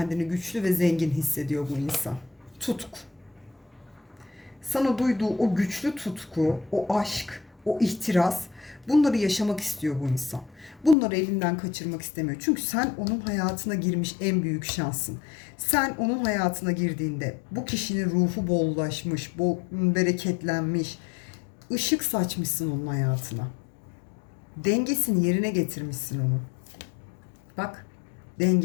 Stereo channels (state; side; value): drops out; right; at 11.0 s